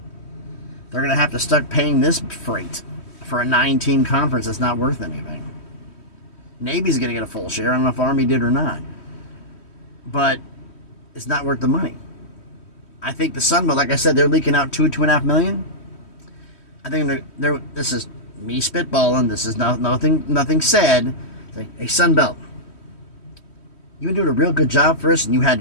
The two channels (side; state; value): right; late; 3.1 ms